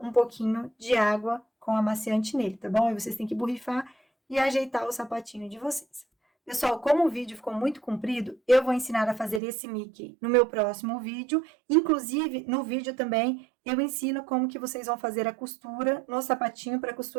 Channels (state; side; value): drops out; left; at 9.4 s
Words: pouquinho de água com amaciante nele, tá bom? Aí vocês têm que borrifar e ajeitar o sapatinho de vocês. Pessoal, como o vídeo ficou muito comprido, eu vou ensinar a fazer esse Mickey no meu próximo vídeo. Inclusive, no vídeo também, eu ensino como que vocês vão fazer a costura no sapatinho para a